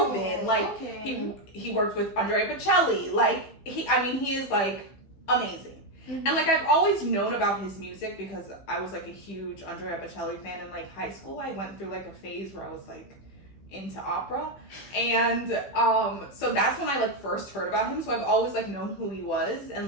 Like he worked with Andrea Bocelli. Like he is like amazing. And like I've always known about his music because I was like a huge Andrea Bocelli fan in like high school. I went through like a phase where I was like into opera, and so that's when I like first heard about him. So I've always like known who he was,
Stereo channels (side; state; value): right; late; 15 ms